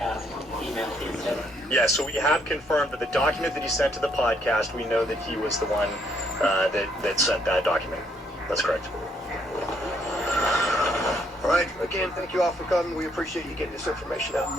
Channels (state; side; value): normal; both; correlation 0.70